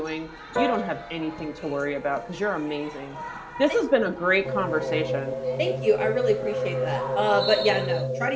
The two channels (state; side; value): identical; both; correlation 1.00